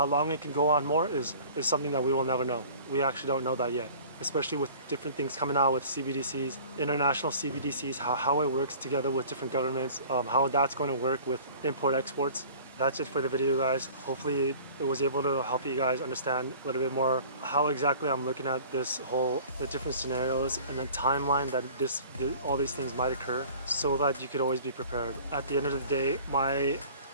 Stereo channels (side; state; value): both; inverted; correlation -0.46